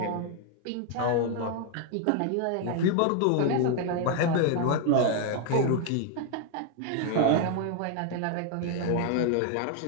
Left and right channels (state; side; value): different; both; correlation 0.00